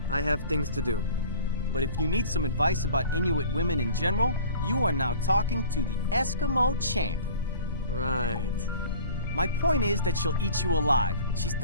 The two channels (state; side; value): inverted; both; correlation -0.45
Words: I have things to do. But if you need some advice about Inuit women in general, you are now talking to the Eskimo champ. Right. My point is that she'll eat you alive. She's